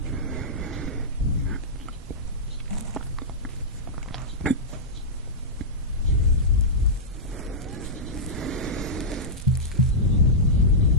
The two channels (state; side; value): normal; both; correlation -0.11